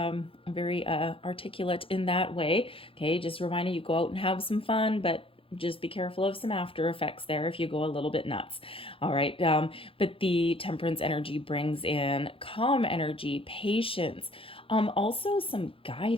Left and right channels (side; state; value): right; late; 0.26 ms